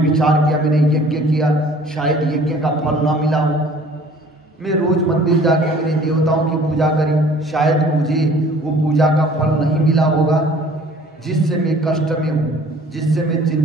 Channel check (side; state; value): both; normal; correlation 0.52